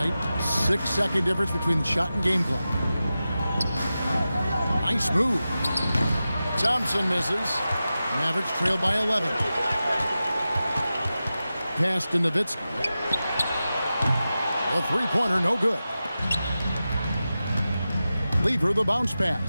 6-second difference between the shot and game clock. Nice move. Thompson misses. Mavericks trail by 11. Pass to Nowitzki. A three-pointer, no good. Lever the bounce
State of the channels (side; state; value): both; inverted; correlation -0.93